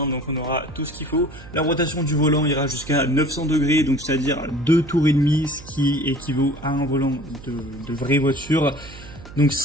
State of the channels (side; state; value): right; noise; hum, 17 dB below the sound